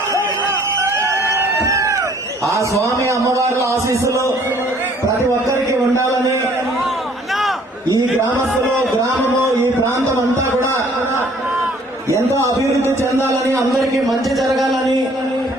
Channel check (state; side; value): normal; both; correlation 0.58